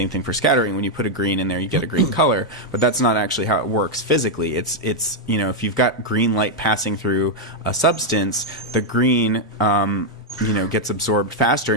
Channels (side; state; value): both; normal; correlation -0.01